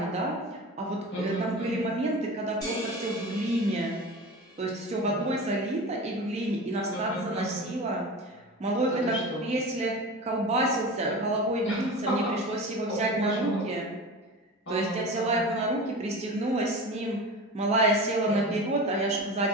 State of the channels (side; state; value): both; normal; correlation 0.31